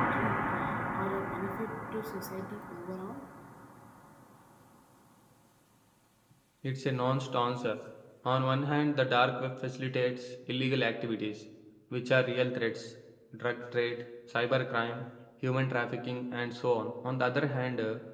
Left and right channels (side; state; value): both; identical; correlation 1.00